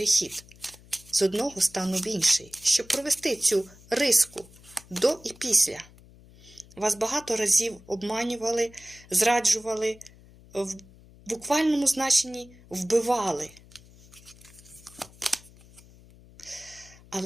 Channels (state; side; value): noise; left; hum, 23 dB below the sound